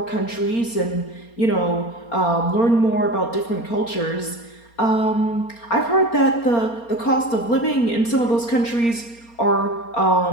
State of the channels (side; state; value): right; late; 4.3 ms